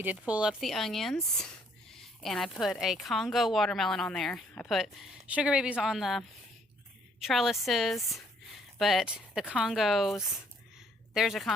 did pull up the onions, and I put a Congo watermelon on there. I put sugar babies on the trellises, but the Congos, there's a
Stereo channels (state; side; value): normal; both; correlation 0.65